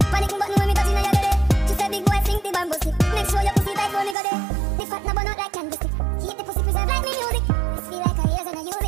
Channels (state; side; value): drops out; left; at 4.2 s